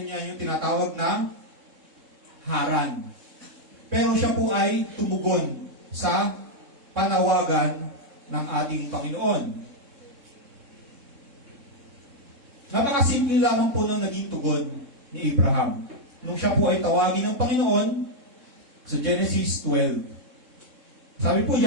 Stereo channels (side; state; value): left; late; 3.7 ms